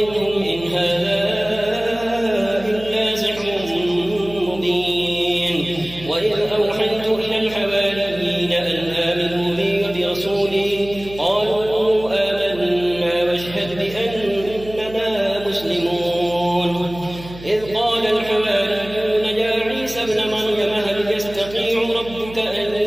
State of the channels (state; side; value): noise; right; hum, 16 dB below the sound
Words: إن هذا إلا سحر مبين وإذ أوحيت إلى الحواريين أن آمنوا بي وبرسولي قالوا آمنا واشهد بأننا مسلمون إذ قال الحواريون يا عيسى ابن مريم هل يستطيع ربك أن